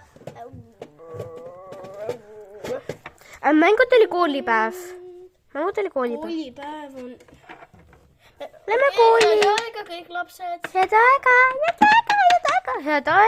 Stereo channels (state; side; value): identical; both; correlation 1.00